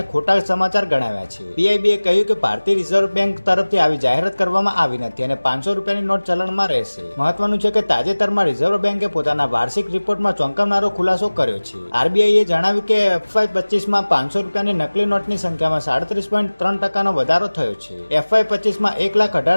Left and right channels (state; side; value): inverted; both; correlation -1.00